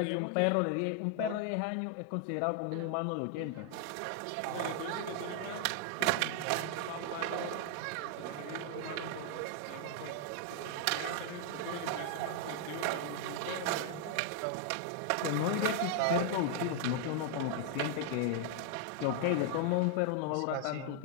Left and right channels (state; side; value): different; both; correlation 0.00